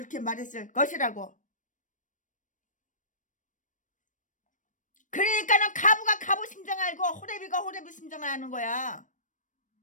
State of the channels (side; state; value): right; late; 0.37 ms